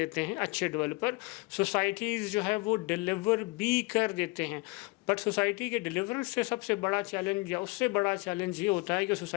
ہیں اچھے ڈیولپر، سوسائٹیز جو ہے وہ ڈیلیور بھی کر دیتے ہیں، بٹ سوسائٹی کے ڈیلیورنس سے سب سے بڑا چیلنج یا اس سے بڑا چیلنج یہ ہوتا ہے کہ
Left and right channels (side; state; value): right; quieter; 25.5 dB